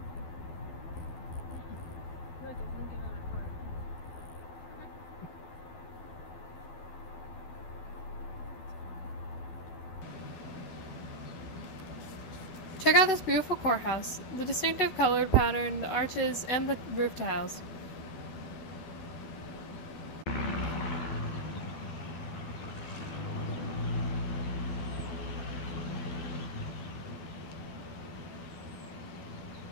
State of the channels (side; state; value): right; late; 12 ms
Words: Check out this beautiful courthouse, the distinctive colored pattern, the arches, and the roof tiles.